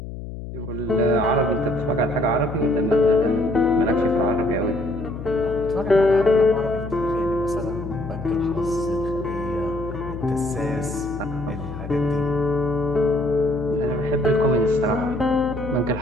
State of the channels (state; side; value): noise; left; hum, 9 dB below the sound